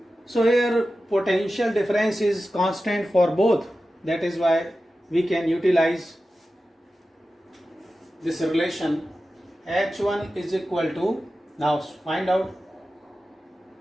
So here potential difference is constant for both. That is why we can utilize this relation. H1 is equal to, now find out.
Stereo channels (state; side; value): normal; both; correlation 0.93